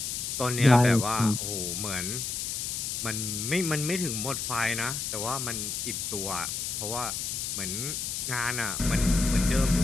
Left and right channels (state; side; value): noise; left; hiss, 3 dB below the sound